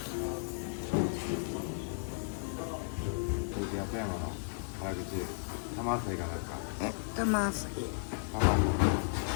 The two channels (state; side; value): silent; right; 55 dB below the other